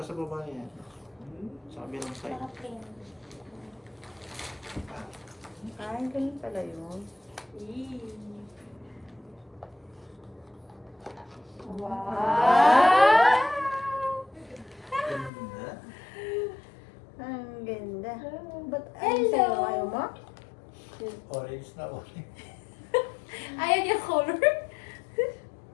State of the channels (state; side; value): drops out; right; at 15.3 s